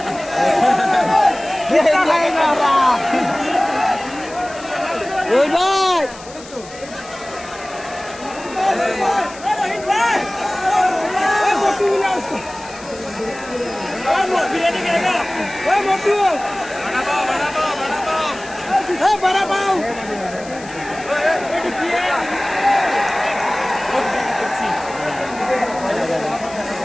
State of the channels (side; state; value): left; noise; hiss, 18 dB below the sound